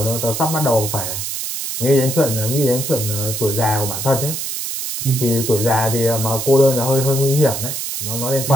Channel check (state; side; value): noise; right; hiss, 4 dB below the sound